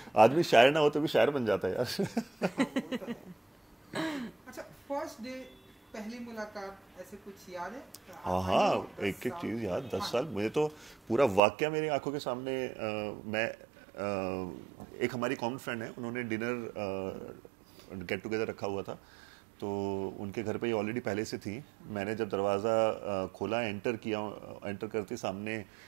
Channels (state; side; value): drops out; left; at 11.4 s